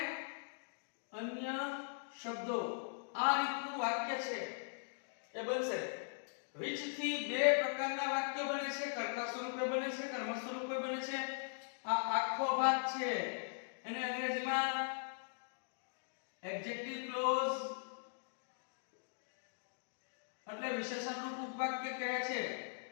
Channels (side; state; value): right; silent; digital silence